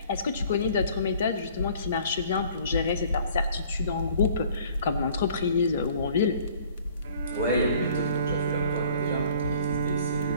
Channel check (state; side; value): inverted; both; correlation -0.54